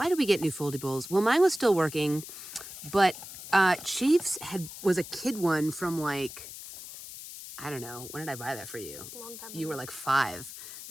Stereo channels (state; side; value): noise; left; hiss, 12 dB below the sound